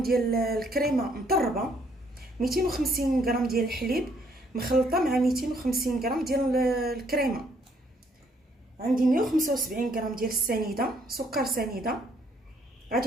ديال الكريمه مطربه، 250 غرام ديال الحليب مخلطه مع 250 غرام ديال الكريمه، عندي 175 غرام ديال السنيده سكر سنيده.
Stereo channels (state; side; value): normal; both; correlation 0.68